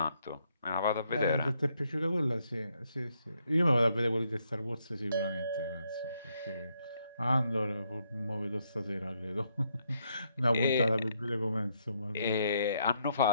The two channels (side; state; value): both; inverted; correlation -0.75